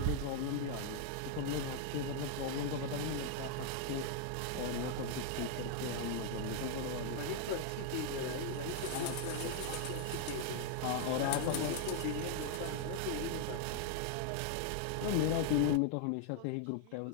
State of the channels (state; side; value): different; both; correlation 0.00